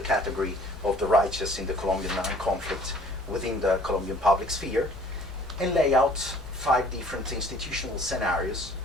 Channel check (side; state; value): both; normal; correlation 0.53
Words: of the righteous in the Colombian Armed Conflict within the Colombian public sphere, and lay out 5 different institutional scenarios